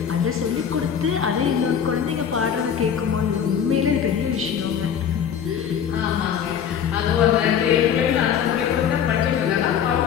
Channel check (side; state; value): right; quieter; 8.2 dB